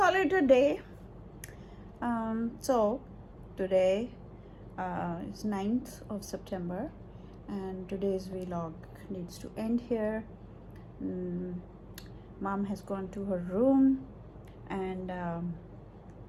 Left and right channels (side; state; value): both; identical; correlation 1.00